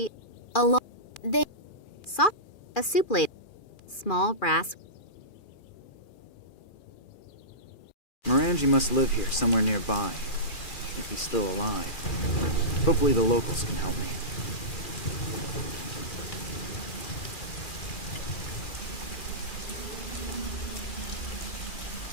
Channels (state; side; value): late; right; 2.4 ms